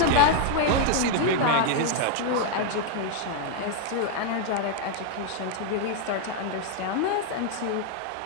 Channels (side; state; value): both; different; correlation 0.00